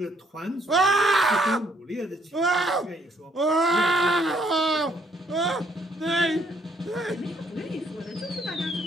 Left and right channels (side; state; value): both; normal; correlation 0.67